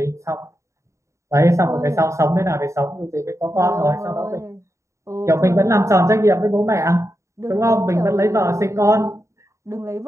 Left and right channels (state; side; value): late; left; 0.14 ms